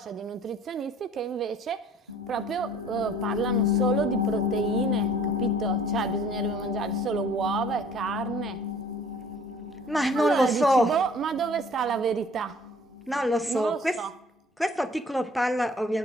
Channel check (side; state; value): both; normal; correlation 0.52